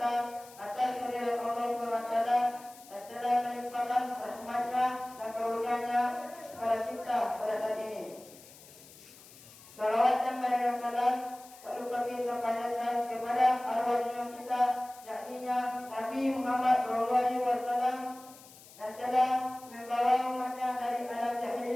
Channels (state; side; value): noise; left; hiss, 21 dB below the sound